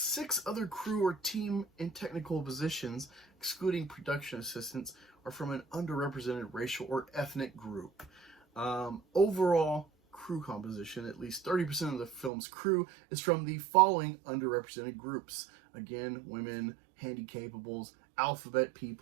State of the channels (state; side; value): drops out; left; at 12.3 s